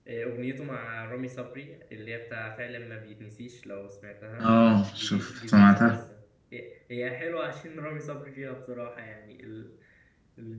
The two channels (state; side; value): identical; both; correlation 1.00